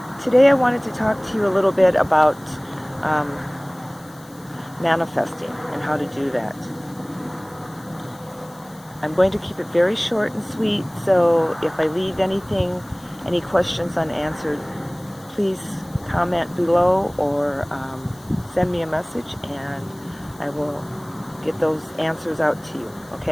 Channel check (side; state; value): left; noise; hiss, 25 dB below the sound